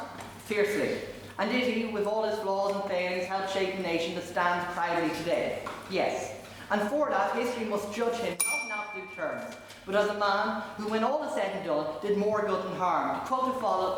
Fiercely. And did he, with all his flaws and failings, help shape a nation that stands proudly today? Yes. And for that, history must judge him not in absolute terms, but as a man who, when all is said and done, did more good than harm. To quote a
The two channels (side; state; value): both; identical; correlation 1.00